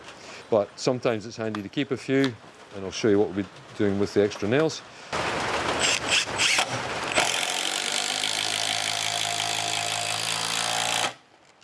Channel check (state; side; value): identical; both; correlation 1.00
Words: But sometimes it's handy to keep a few, and I'll show you what we'll be doing with the extra nails.